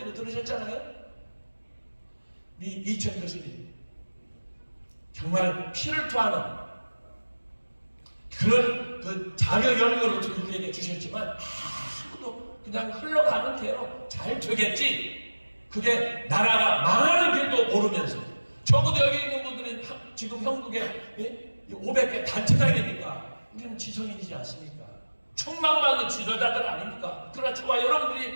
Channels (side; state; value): both; inverted; correlation -1.00